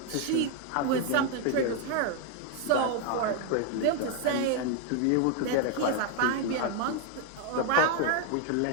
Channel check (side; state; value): both; different; correlation 0.01